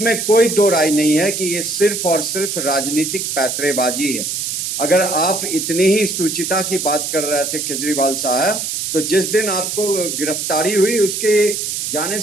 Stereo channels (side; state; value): right; noise; hiss, 3 dB below the sound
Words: कोई दो राय नहीं है कि ये सिर्फ और सिर्फ राजनीतिक पैतरेबाजी है। अगर आप इतनी ही सुचिता की बात कर रहे थे केजरीवाल साहब, तो जिस दिन आपको गिरफ्तारी हुई उसके जाने